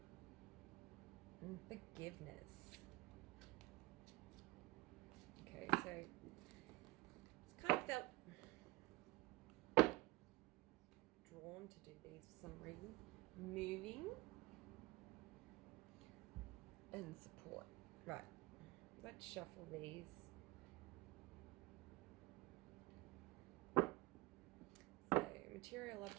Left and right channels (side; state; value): left; quieter; 20.6 dB